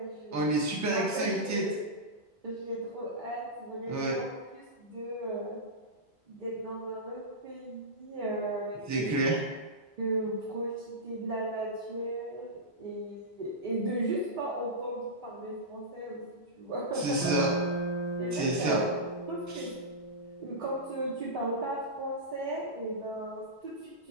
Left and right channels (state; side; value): normal; both; correlation -0.13